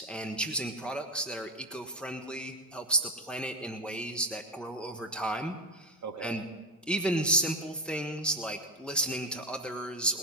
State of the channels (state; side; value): normal; both; correlation 0.15